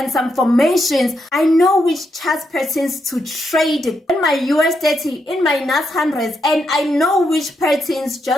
some formations, I know which chart patterns to trade in my USD, in my NAS 100s, and I know which patterns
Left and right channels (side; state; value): both; normal; correlation 0.81